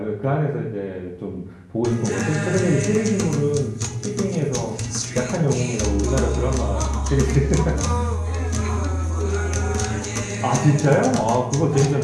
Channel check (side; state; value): both; identical; correlation 1.00